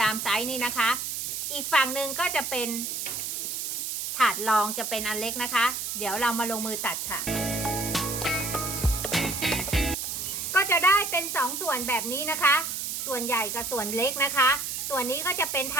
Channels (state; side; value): noise; right; hiss, 3 dB below the sound